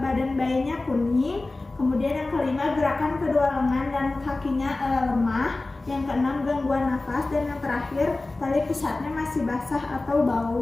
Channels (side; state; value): right; quieter; 3.1 dB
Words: bayinya kuning. Kemudian yang kelima gerakan kedua lengan dan kakinya lemah. Yang keenam gangguan nafas, dan yang terakhir tali pusatnya masih basah atau bau